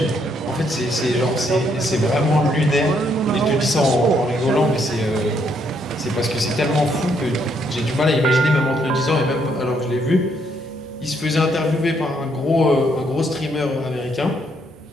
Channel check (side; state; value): both; normal; correlation 0.72